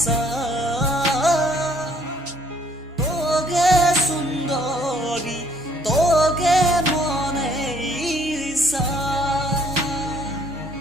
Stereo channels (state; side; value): normal; both; correlation 0.63